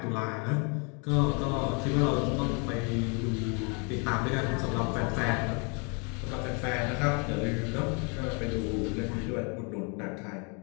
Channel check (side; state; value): right; quieter; 35.1 dB